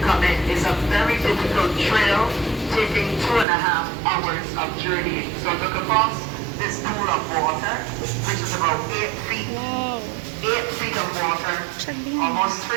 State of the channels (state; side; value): drops out; left; at 3.5 s